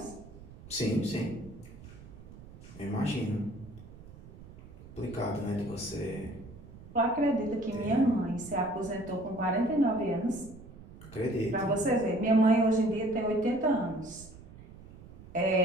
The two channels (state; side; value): noise; right; rumble, 18 dB below the sound